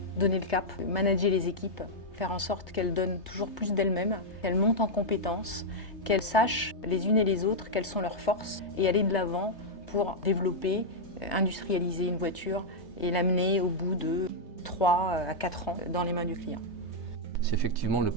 donner le cap, manager les équipes, faire en sorte qu'elles donnent toujours plus d'elles-mêmes, qu'elles montent en compétences, qu'elles sachent les unes et les autres quelles sont leurs forces et aller de l'avant pour développer, industrialiser une voiture et l'amener au bout de 3 à 4 ans dans les mains du client. C'est effectivement le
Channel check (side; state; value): right; late; 3.3 ms